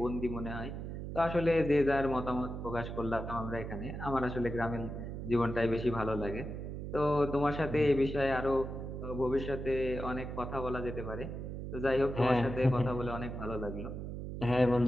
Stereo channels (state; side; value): noise; right; hum, 6 dB below the sound